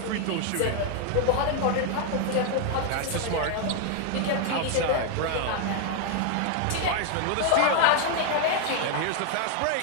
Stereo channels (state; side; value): different; both; correlation 0.00